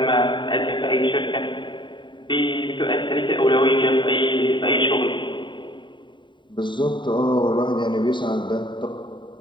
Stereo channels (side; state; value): right; late; 0.23 ms